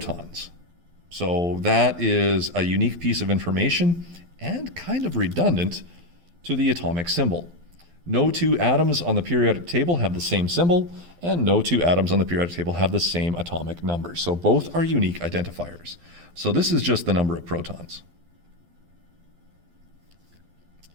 So that is a unique piece of information and kind of redundant to the atomic symbol. No two atoms on the periodic table have the same symbol, and no two atoms on the periodic table have the same atomic number. So both are unique identifiers. So this is just the number of protons.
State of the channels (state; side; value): late; left; 12 ms